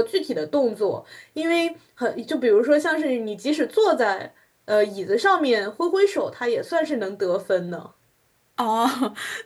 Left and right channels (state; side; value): identical; both; correlation 1.00